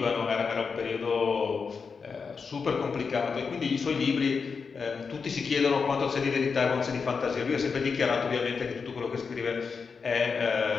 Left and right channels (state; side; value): quieter; right; 5.4 dB